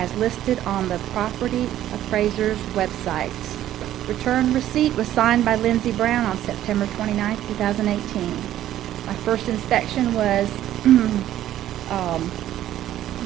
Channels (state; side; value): quieter; left; 12.6 dB